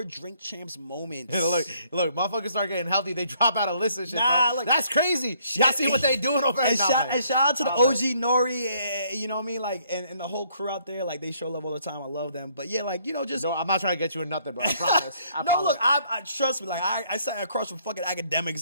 Drink Champs moments. Look, motherfuckers start getting healthy. They drop out a list of shit. Nah, like, that's crazy. Y'all see what they doing over there? And shout out to the OG Nori, you know what I mean? Like and the whole crew out there, like they show love all the time. I love them. But yeah, like just no, I'm not trying to get you in nothing, bro. I promise. Look, I trust me. Like I sat across from fucking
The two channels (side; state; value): both; inverted; correlation -0.66